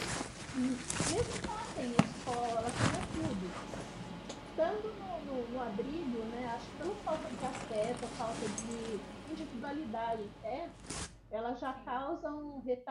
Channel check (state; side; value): identical; both; correlation 1.00